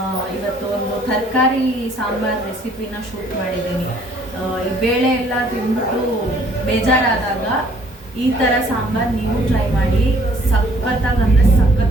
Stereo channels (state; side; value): normal; both; correlation 0.60